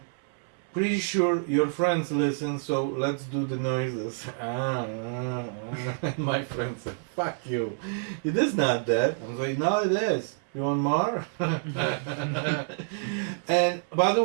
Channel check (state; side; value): silent; left; 59 dB below the other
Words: pretty sure your friends listen, so let's do the noises. And my friend said, fuck you. It is not that. I was like, no, it is. You want more? And by the